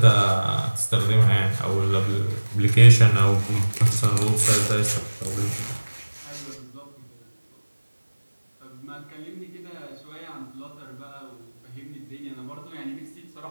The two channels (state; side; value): inverted; both; correlation -1.00